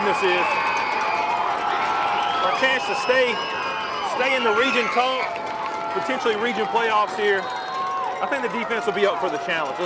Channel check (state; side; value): identical; both; correlation 1.00